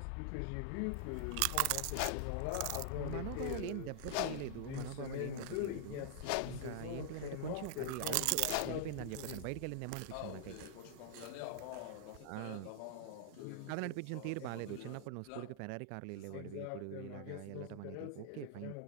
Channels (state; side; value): different; both; correlation -0.01